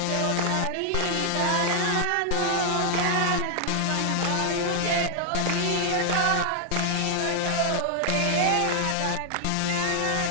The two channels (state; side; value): different; both; correlation -0.01